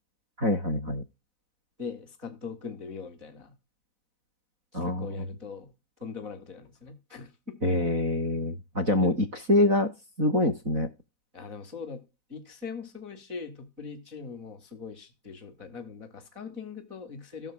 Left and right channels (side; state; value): left; late; 4.0 ms